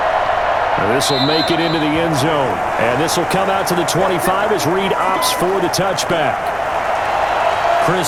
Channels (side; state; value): both; identical; correlation 1.00